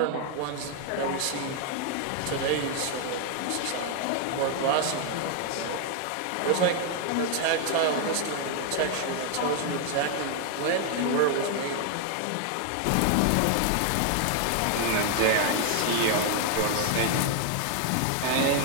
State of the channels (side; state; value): both; different; correlation 0.00